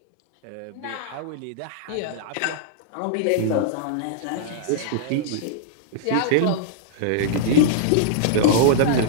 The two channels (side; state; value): both; different; correlation -0.02